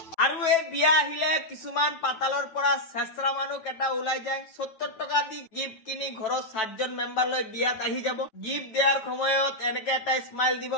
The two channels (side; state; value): right; late; 9.1 ms